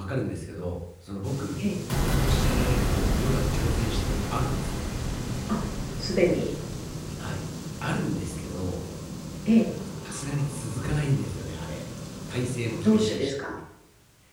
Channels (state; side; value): identical; both; correlation 1.00